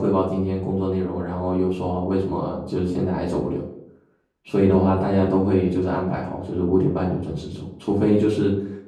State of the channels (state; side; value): identical; both; correlation 1.00